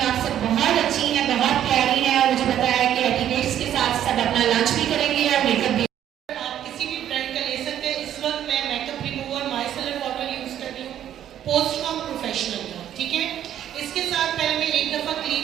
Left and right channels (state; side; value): quieter; left; 10.8 dB